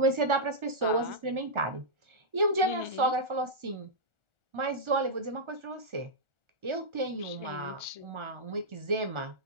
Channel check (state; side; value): late; left; 1.4 ms